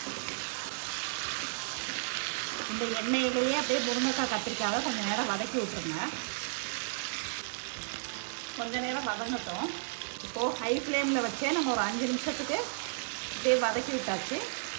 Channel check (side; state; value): left; silent; digital silence